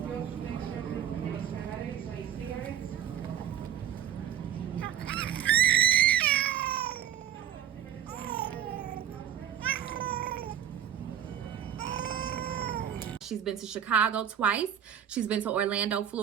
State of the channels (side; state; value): left; quieter; 9.9 dB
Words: She's been to Chicago twice. She's been to Orlando,